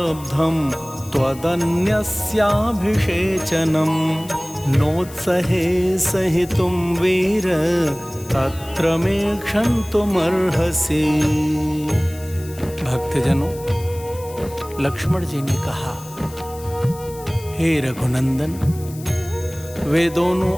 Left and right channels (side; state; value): left; noise; hiss, 19 dB below the sound